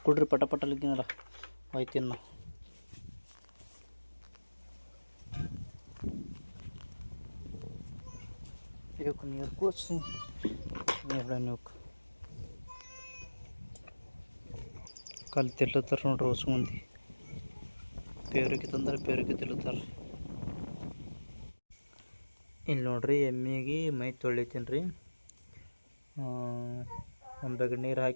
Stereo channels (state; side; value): inverted; both; correlation -1.00